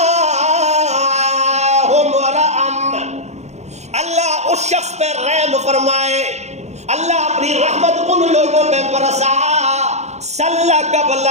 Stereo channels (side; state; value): left; late; 0.32 ms